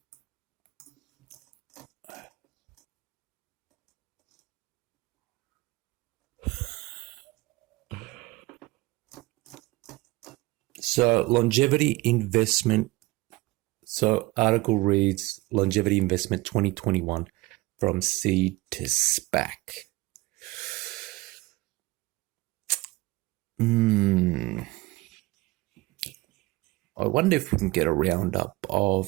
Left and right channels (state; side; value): quieter; left; 21.4 dB